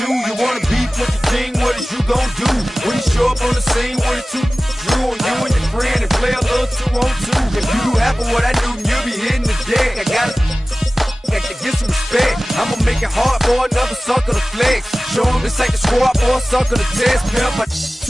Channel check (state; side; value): normal; both; correlation 0.97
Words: You wanna beef with the king? What is you gon' do when you show up on the scene with a two Drew on you and your friend and play a little 2 on 2? If you do half of what I do, then you'll be hitting the deck. I gotta get some respect. I'ma make it hard for another sucker to flex. Show him this ain't the squad or a sucker to test. Pimp, but